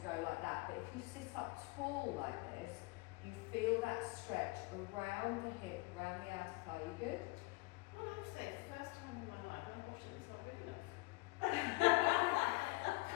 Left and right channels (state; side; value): quieter; right; 24.0 dB